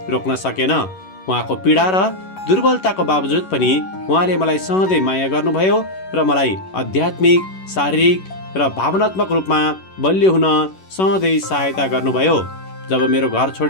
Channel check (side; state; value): right; late; 11 ms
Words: रोक्न सकेन। उहाँको पीडा र दुर्बलताको बावजुद पनि उहाँले मलाई सधैँ माया गर्नुभयो र मलाई आध्यात्मिक, शारीरिक र भावनात्मक रूपमा बलियो हुन सधैँ सहायता गर्नुभयो। जब मेरो घर